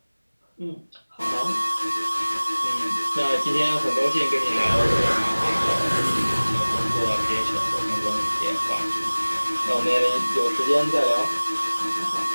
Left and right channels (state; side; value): inverted; both; correlation -1.00